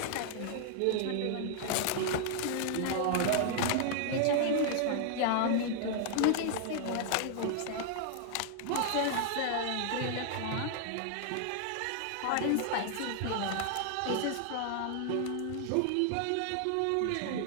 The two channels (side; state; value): both; different; correlation 0.00